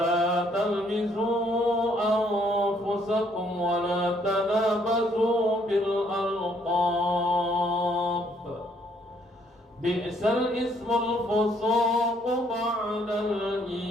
تلمزوا أنفسكم ولا تنابزوا بالألقاب بئس الاسم الفسوق بعد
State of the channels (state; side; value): normal; both; correlation 0.67